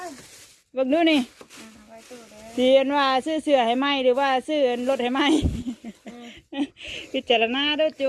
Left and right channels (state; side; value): identical; both; correlation 1.00